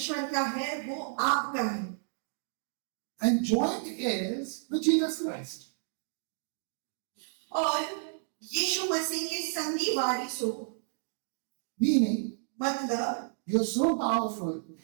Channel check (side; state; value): left; silent; digital silence